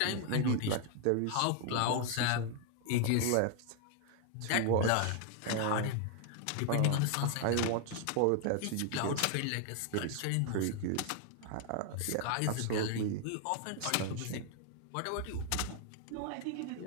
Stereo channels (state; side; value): different; both; correlation 0.00